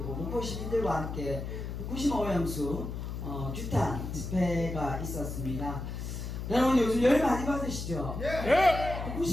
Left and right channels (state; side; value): noise; left; hum, 6 dB below the sound